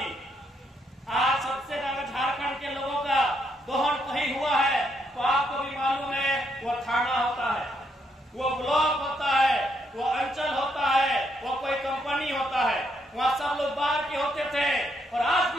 आज सबसे ज्यादा झारखंड के लोगों का दोहन कहीं हुआ है तो आपको भी मालूम है, वो थाना होता है, वो ब्लॉक होता है, वो अंचल होता है, वो कोई कंपनी होता है, वहाँ सब लोग बाहर के होते थे। और आज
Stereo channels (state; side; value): normal; both; correlation 0.76